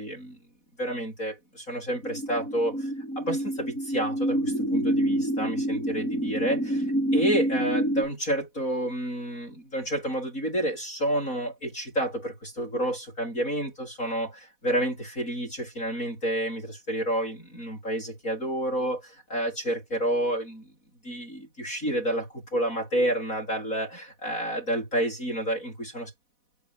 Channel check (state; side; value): late; right; 4.1 ms